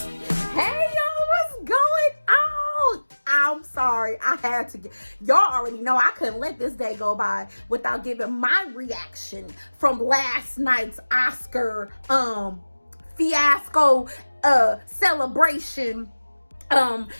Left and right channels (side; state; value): both; inverted; correlation -1.00